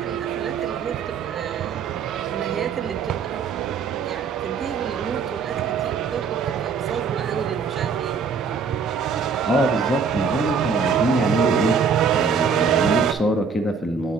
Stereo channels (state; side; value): quieter; left; 5.5 dB